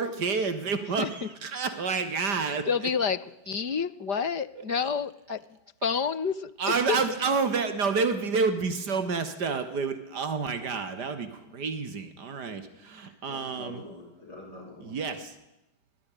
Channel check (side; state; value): left; late; 5.0 ms